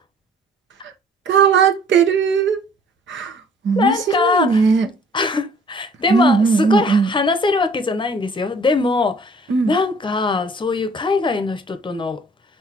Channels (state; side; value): normal; both; correlation 0.54